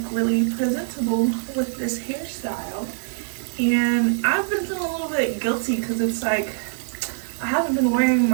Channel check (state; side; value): silent; left; digital silence